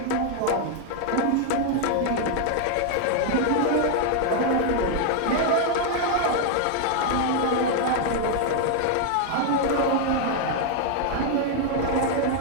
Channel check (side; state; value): both; different; correlation 0.00